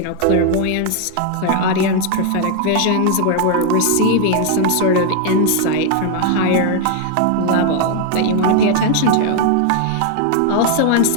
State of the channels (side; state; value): both; different; correlation 0.00